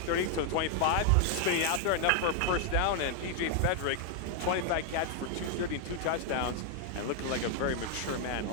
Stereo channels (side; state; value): both; different; correlation 0.00